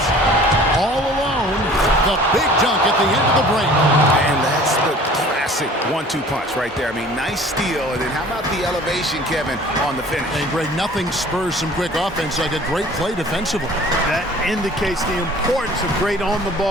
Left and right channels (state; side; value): normal; both; correlation 0.48